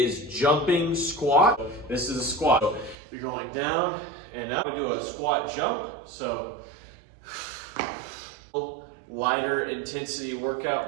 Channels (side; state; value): left; drops out; at 3.0 s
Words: jumping squat. This is a squat. So you're going down and up. I'm going to do a squat jump. So lighter intensity